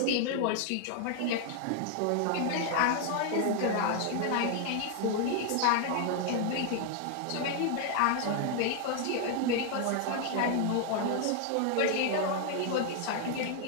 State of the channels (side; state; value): both; different; correlation 0.00